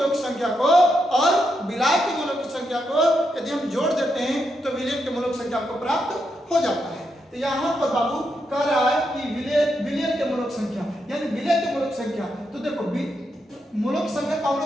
की संख्या को और विलायक के मोलों की संख्या को यदि हम जोड़ देते हैं तो विलयन के मोलों की संख्या को प्राप्त हो जाता है। तो यहाँ पर बाबू कह रहा है कि विलयन के मोलों की संख्या यानी विलय के मोलों की संख्या, तो देखो मोलों की संख्या को हम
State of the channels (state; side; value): normal; both; correlation 0.82